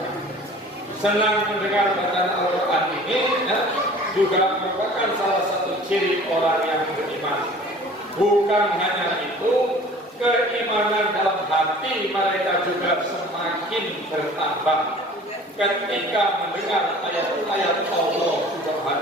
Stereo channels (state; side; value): normal; both; correlation 0.46